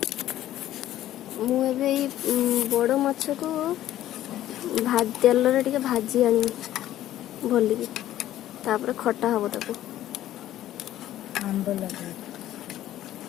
मुझे बड़ माछ को तेल टे भाजी आनी भलिकी तापर खटा हम ताको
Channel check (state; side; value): quieter; right; 13.2 dB